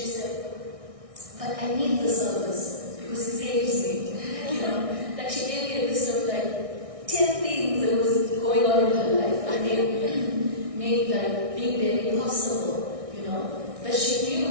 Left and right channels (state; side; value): late; left; 1.6 ms